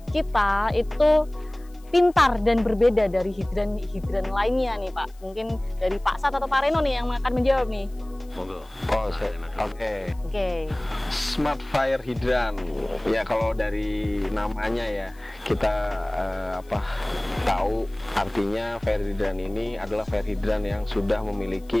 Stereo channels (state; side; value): noise; left; hiss, 29 dB below the sound